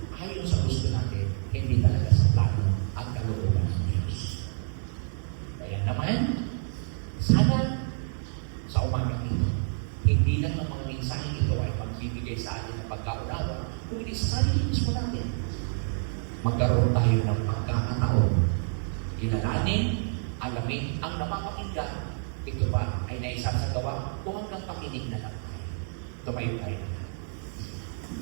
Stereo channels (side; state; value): left; silent; 59 dB below the other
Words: ayon sa gusto natin, hindi talaga sa plano at kalooban ng Diyos. Kaya naman, sana sa umagang ito, hindi lang ng mga mensaheng ito ay magbibigay sa atin ng pagkaunawa, kung hindi sa sarili mismo natin. Magkaroon tayo ng pagkakataon, kilalanin, alamin ang napapakinggan. Ito ba ay naisasagawa o hanggang pakinig na lang tayo? Tumayo tayo na.